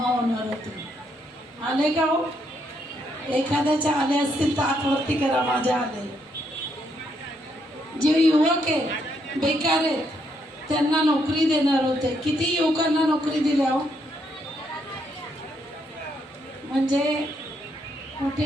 होणार होते. आले का हो? एखाद्याच्या आले असतील तर हातवरती करा. माझ्या आले. जे युवक आहेत, बेकार आहेत, त्यांना नोकरी देणार होते. किती युवकांना नोकरी दिल्या हो? म्हणजे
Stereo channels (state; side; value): normal; both; correlation 0.75